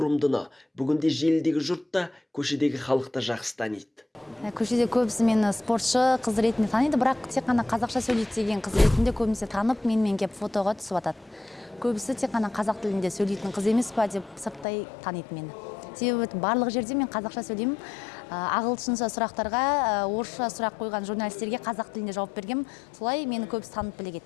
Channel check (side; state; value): right; drops out; at 14.7 s